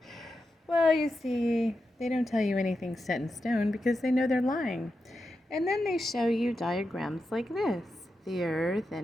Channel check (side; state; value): both; normal; correlation 0.88